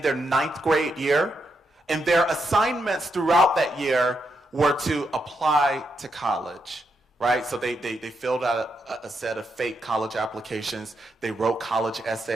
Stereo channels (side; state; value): both; normal; correlation 0.82